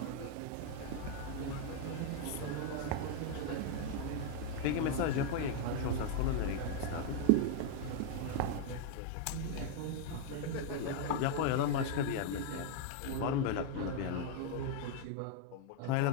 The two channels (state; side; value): different; both; correlation 0.00